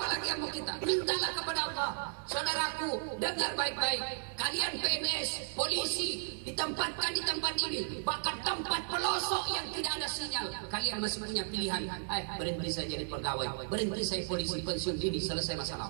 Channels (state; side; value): silent; left; digital silence